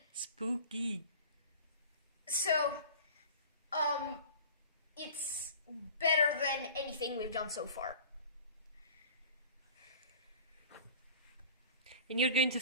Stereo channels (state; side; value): inverted; both; correlation -0.41